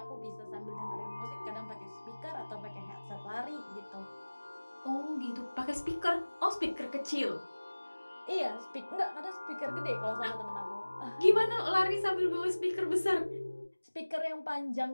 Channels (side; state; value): both; inverted; correlation -1.00